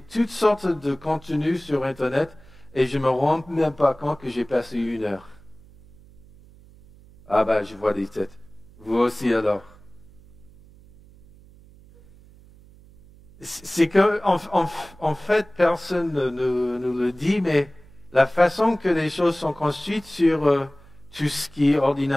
toutes sortes de contenus sur Internet et je ne me rends même pas compte que j'ai passé 1 heure. Je vois des têtes. Vous aussi alors. C'est que, en fait, personne ne nous le dit, mais la façon que les choses sont construites sur tout ce qui est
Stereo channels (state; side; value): noise; right; hum, 24 dB below the sound